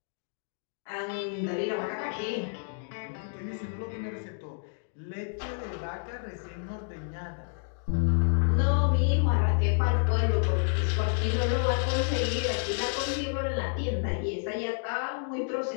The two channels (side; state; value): right; silent; digital silence